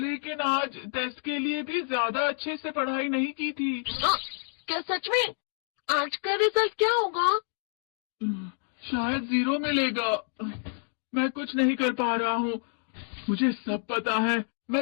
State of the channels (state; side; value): silent; right; digital silence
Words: आज टेस्ट के लिए भी ज्यादा अच्छे से पढ़ाई नहीं की थी। क्या सच में? आज का रिजल्ट क्या होगा? शायद 0 मिलेगा। मैं कुछ नहीं कर पा रहा हूँ। मुझे सब पता है।